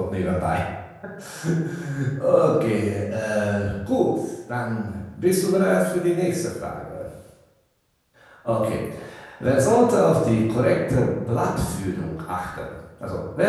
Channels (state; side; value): identical; both; correlation 1.00